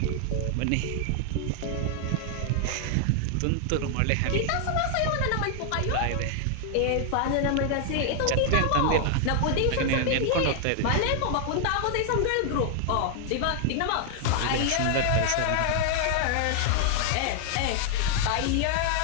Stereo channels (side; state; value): both; different; correlation 0.00